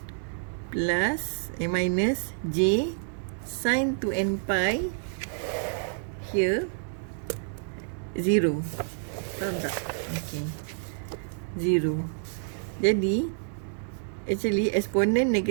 plus minus J sin 2n pi, here 0. Faham tak? Okay, 0. Jadi actually eksponen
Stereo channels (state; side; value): silent; left; digital silence